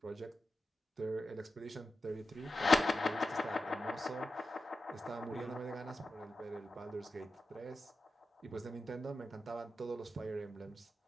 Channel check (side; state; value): both; normal; correlation 0.91